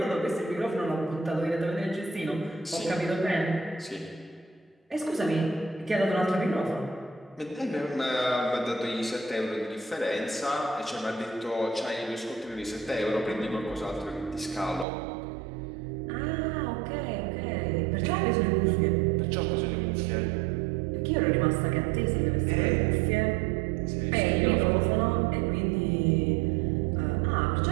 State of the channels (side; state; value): left; drops out; at 14.9 s